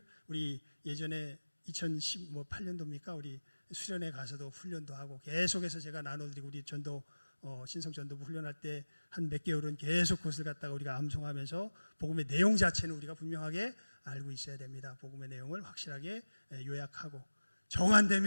우리 예전에 2018년도입니까? 우리 수련회 가서도 훈련도 하고 계속해서 제가 나눠드리고, 우리 전도 신성전도부 훈련할 때 한 몇 개월은 계속 그것을 갖다가 우리가 암송하면서 복음의 내용 자체는 우리가 분명하게 알고 있어야 됩니다. 복음의 내용을 확실하게 요약하고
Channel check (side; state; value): both; inverted; correlation -1.00